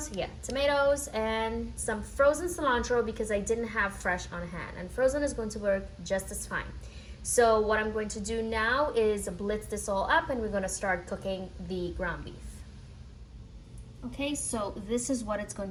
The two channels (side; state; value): both; identical; correlation 1.00